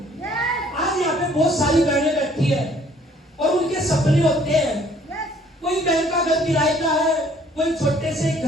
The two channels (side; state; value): both; normal; correlation 0.59